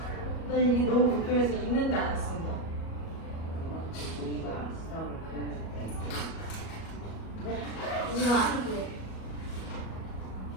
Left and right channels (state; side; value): late; right; 37 ms